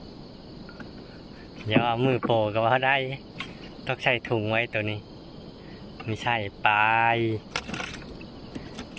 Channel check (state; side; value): identical; both; correlation 1.00